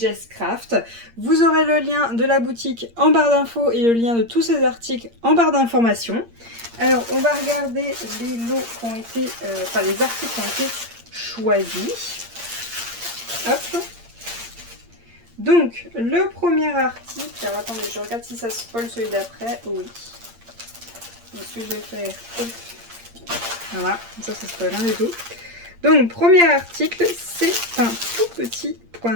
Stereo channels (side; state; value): left; late; 8.6 ms